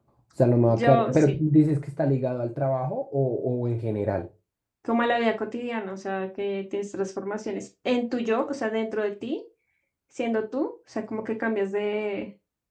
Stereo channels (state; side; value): identical; both; correlation 1.00